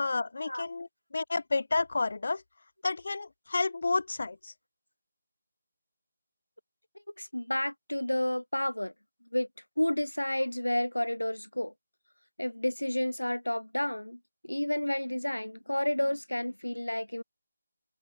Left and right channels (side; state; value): both; inverted; correlation -0.99